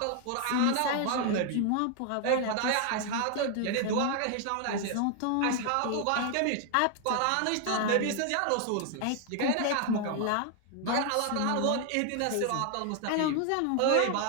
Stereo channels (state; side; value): different; both; correlation 0.00